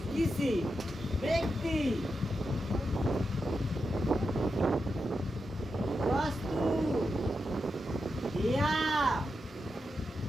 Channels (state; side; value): normal; both; correlation 0.87